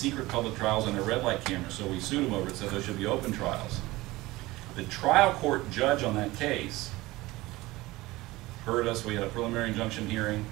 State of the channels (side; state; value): left; quieter; 19.6 dB